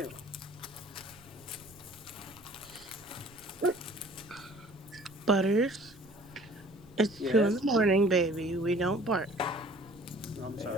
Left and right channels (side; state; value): right; noise; rumble, 25 dB below the sound